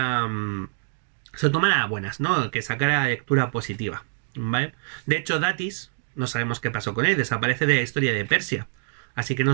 a buenas, ¿no? Que sacara la lectura positiva, ¿vale? De hecho, Datis, no sabemos qué pasó con él, desaparece de la historia de Persia, así que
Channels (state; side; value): silent; left; digital silence